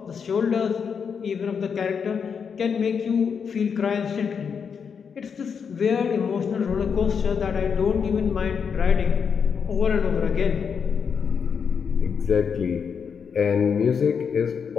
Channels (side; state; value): right; quieter; 6.5 dB